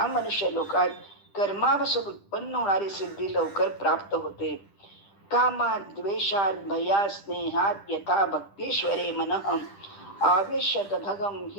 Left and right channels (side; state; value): right; late; 10 ms